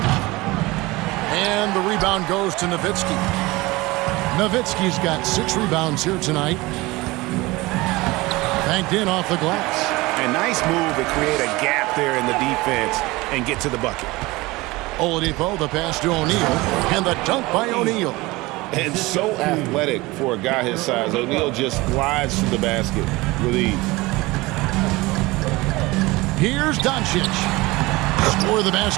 And the rebound goes to Nowitzki. Nowitzki's got 6 rebounds here tonight. Banked in off the glass. A nice move to create a gap there in the defense and get to the bucket. Oladipo, the pass to O'Neal, and the dunk by O'Neal. And so athletic for a guy his size. O'Neal just glides to the basket with ease. Here's Doncic. Score of the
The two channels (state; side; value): quieter; left; 21.5 dB